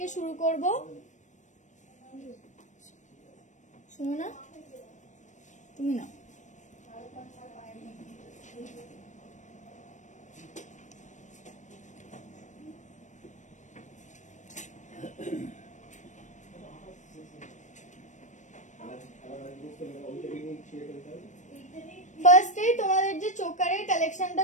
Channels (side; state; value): right; late; 0.35 ms